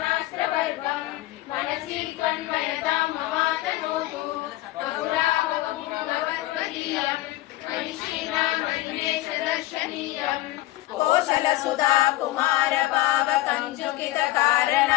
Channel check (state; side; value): quieter; right; 17.2 dB